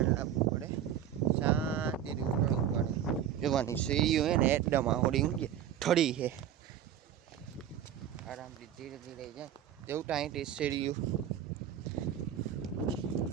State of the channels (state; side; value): quieter; left; 10.0 dB